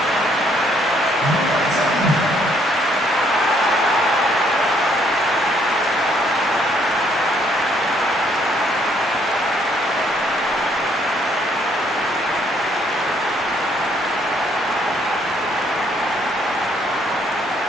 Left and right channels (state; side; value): normal; both; correlation 0.67